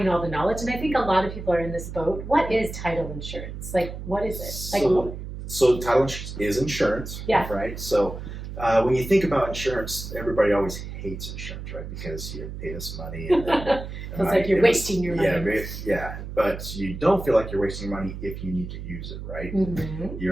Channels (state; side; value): noise; right; hum, 9 dB below the sound